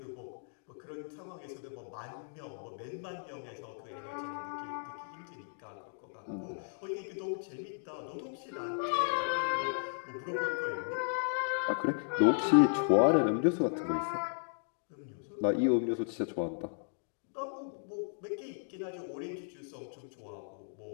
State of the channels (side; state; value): right; silent; digital silence